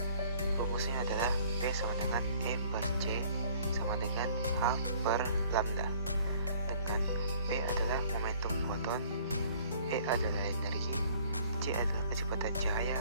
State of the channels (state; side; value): inverted; both; correlation -0.56